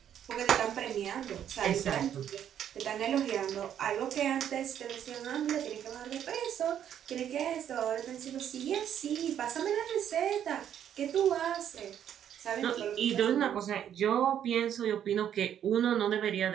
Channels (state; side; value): quieter; left; 9.8 dB